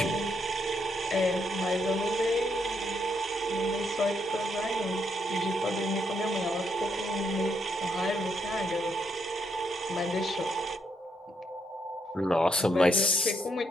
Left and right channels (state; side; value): normal; both; correlation 0.76